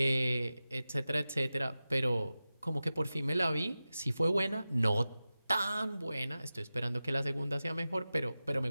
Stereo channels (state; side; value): inverted; both; correlation -0.95